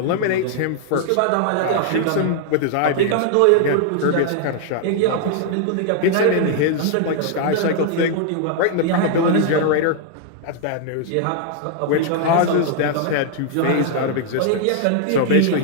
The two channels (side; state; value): both; different; correlation 0.00